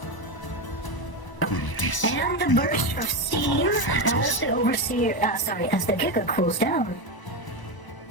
And the burst of steam as the Overseer, as the Giga cools down.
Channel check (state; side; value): late; right; 1.0 ms